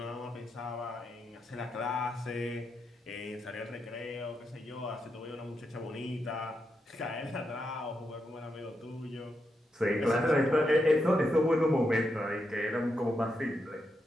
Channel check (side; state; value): both; normal; correlation 0.84